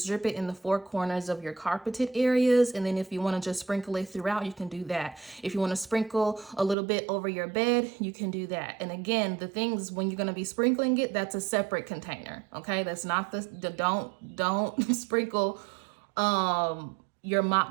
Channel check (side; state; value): left; drops out; at 6.8 s